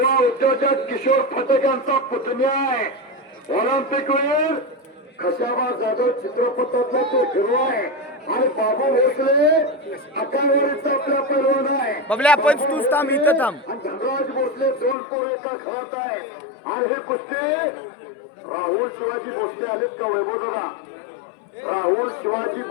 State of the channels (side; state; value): right; drops out; at 15.0 s